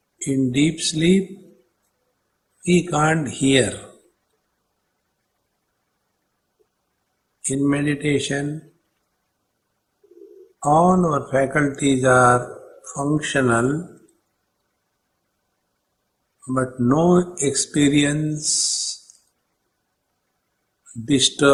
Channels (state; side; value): identical; both; correlation 1.00